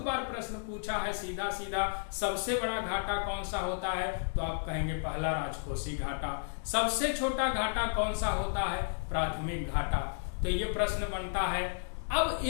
बार प्रश्न पूछा है सीधा सीधा। सबसे बड़ा घाटा कौन सा होता है, तो आप कहेंगे पहला राजकोषीय घाटा। सबसे छोटा घाटा कौन सा होता है, प्राथमिक घाटा। तो ये प्रश्न बनता है। अब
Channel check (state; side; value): silent; right; digital silence